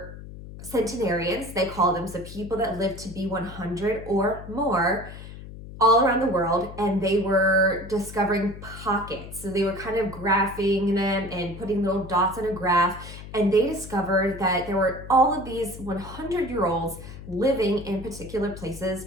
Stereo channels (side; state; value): left; noise; hum, 13 dB below the sound